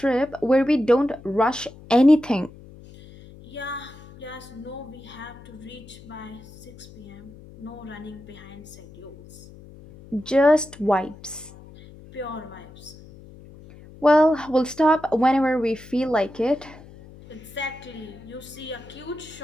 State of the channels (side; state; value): left; noise; hum, 19 dB below the sound